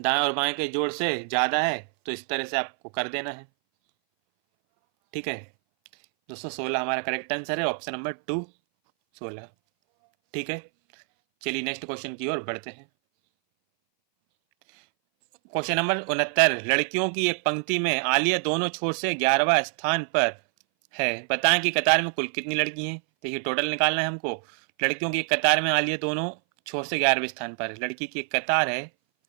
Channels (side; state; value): left; silent; 59 dB below the other